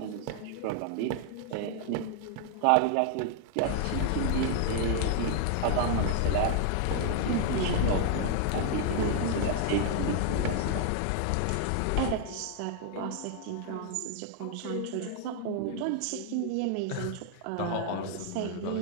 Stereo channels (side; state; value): both; different; correlation 0.00